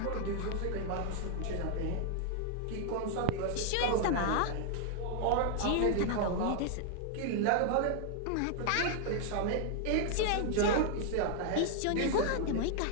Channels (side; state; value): both; different; correlation 0.00